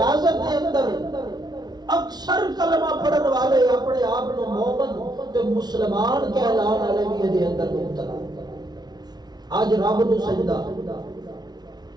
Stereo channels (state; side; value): late; left; 0.19 ms